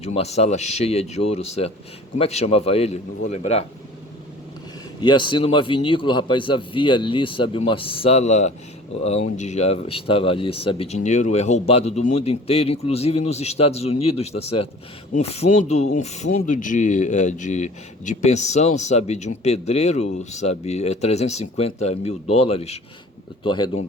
uma sala cheia de ouro, certo? Como é que chamava ele? Não vou lembrar. E assim numa vinícola, rapaz, havia ali, sabe, uma sala onde já estava ali, sabe, dinheiro roubado do mundo inteiro, inclusive nos Estados Unidos, tá certo? Um fundo de pensão, sabe, de um pedreiro, sabe, 350 mil dólares. Estou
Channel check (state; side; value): normal; both; correlation 0.46